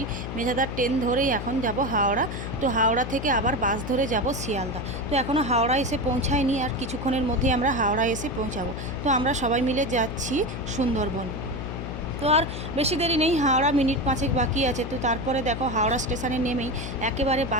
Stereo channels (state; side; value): noise; left; hum, 6 dB below the sound